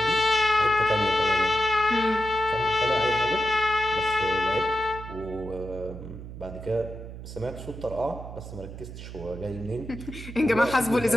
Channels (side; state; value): right; noise; hum, 11 dB below the sound